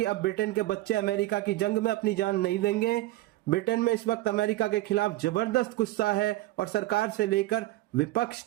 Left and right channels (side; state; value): left; quieter; 17.3 dB